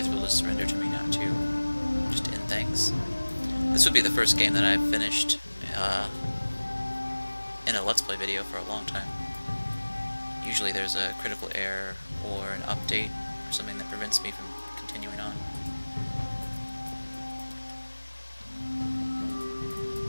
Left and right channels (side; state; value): both; inverted; correlation -1.00